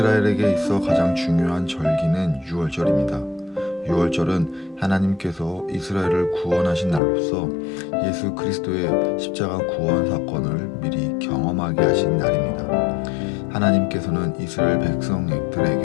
있어 가장 중요한 절기는 유월절입니다. 유월절은 하나님께서 이스라엘을 구원하신 날로서 예수 그리스도의 십자가 구원 사건을 미리 경험하게 하신 날입니다. 하나님께서는 이스라엘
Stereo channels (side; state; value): right; drops out; at 7.0 s